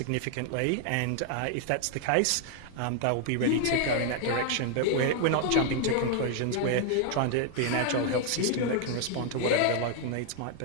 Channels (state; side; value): different; both; correlation 0.00